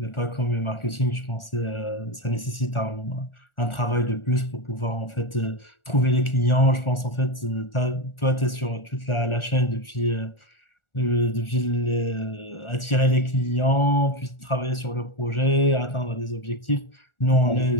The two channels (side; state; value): right; late; 1.4 ms